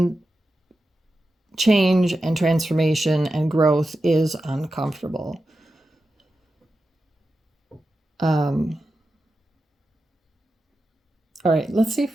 change and transformation and growth is uncomfortable. All right, let's see if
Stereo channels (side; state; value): both; normal; correlation 0.91